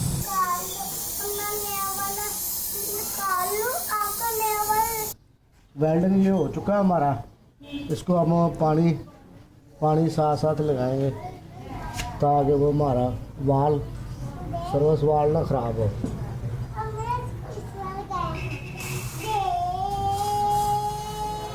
वेल्डिंग ये हो चुका है हमारा। इसको हम पानी साथ साथ लगाएंगे ताकि वो हमारा वाल सर्विस वाल ना ख़राब हो।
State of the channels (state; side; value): identical; both; correlation 1.00